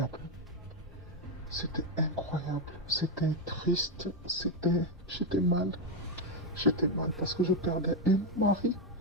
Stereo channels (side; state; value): both; normal; correlation 0.05